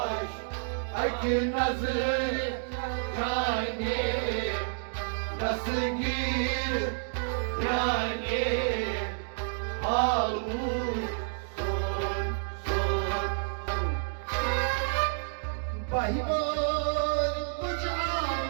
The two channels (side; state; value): left; silent; digital silence